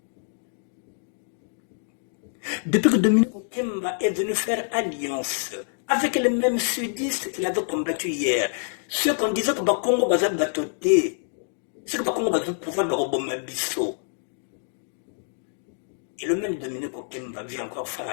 Depuis que Dominique Okemba est venu faire alliance avec les mêmes sudistes qu'il avait combattu hier, ceux qu'on disait que Congo va batoter, ceux que Congo va pouvoir le robommer bisso. Et le même Dominique Okemba vient encore faire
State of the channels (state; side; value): silent; right; digital silence